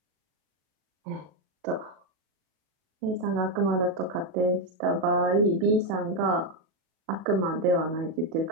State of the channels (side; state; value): left; late; 38 ms